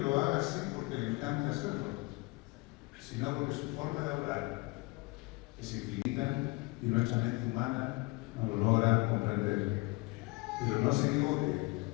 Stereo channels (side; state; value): right; quieter; 24.4 dB